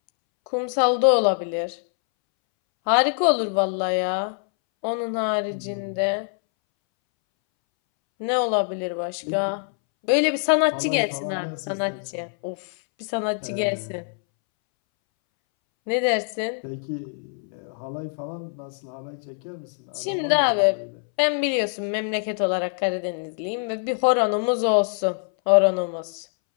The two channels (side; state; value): right; silent; 62 dB below the other